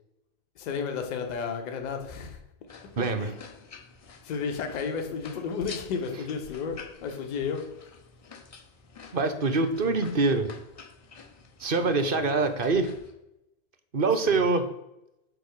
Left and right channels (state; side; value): late; left; 2.5 ms